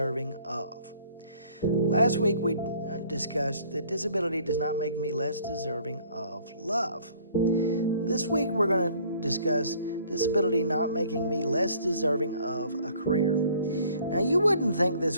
of. Last week we discussed that disability does not make me less deserving of love. This week we're going to discuss disability not making me less deserving of a career. Now, you wouldn't think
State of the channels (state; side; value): inverted; both; correlation -0.56